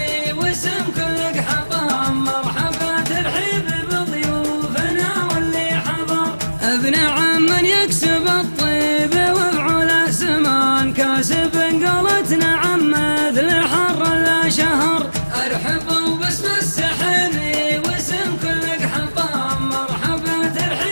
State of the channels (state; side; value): inverted; both; correlation -1.00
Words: واسم كل حطام، مرحبا ترحيب بضيوفنا واللي حضر، ابن عم يكسب الطيب وفعل سمان، كاسب قولتنا عم مثل حر لا شهر. ارحبوا باسم السحيمي واسم كل حطام، مرحبا